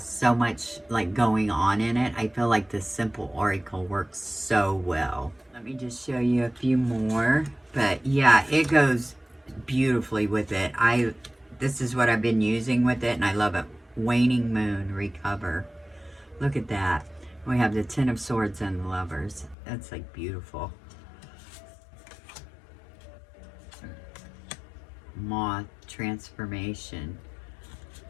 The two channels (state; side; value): drops out; right; at 19.6 s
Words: so much like going on in it. I feel like the simple oracle works so well. Let me just show you a few more. But yeah, it goes beautifully with it. This is what I've been using with it, and I love it. Waning Moon, Recover. Look at that. We have the Ten of Swords and the Lovers. That's like beautiful. Moth, Transformation.